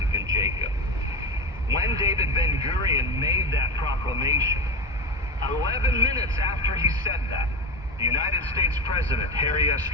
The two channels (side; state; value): both; normal; correlation 0.23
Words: and Jacob. When David Ben-Gurion made that proclamation, 11 minutes after he said that, the United States President, Harry S.